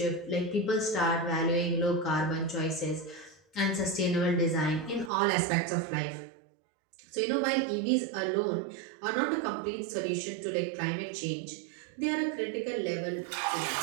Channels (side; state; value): left; drops out; at 5.1 s